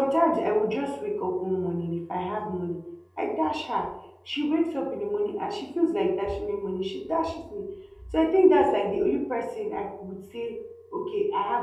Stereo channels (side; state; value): both; identical; correlation 1.00